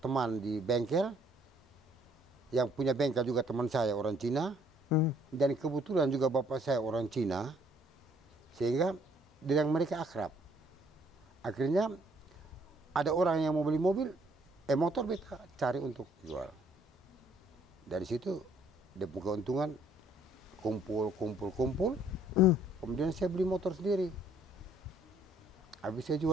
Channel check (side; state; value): both; normal; correlation 0.63